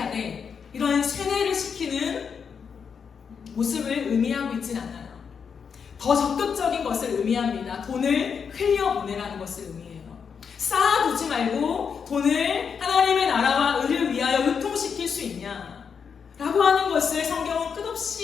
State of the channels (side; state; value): right; quieter; 6.5 dB